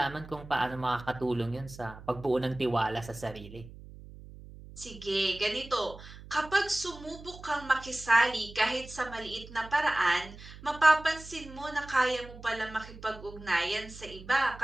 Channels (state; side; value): noise; right; hum, 16 dB below the sound